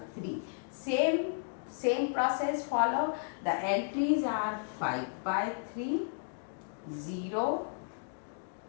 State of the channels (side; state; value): right; silent; digital silence